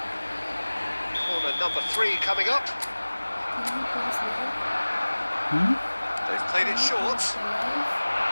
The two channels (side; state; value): both; inverted; correlation -1.00